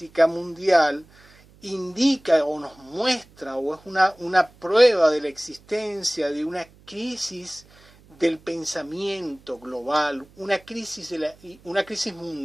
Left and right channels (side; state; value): right; noise; hum, 27 dB below the sound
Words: mundial indica o nos muestra o es una prueba de la existencia de una crisis del pensamiento global, una crisis